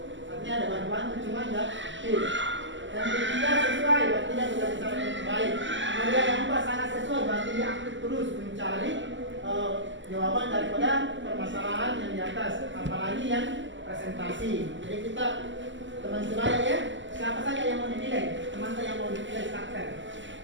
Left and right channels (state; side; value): late; left; 0.54 ms